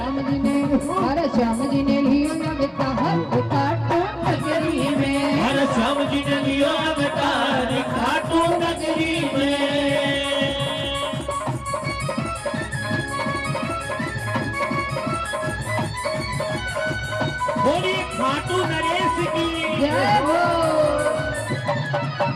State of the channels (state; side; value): identical; both; correlation 1.00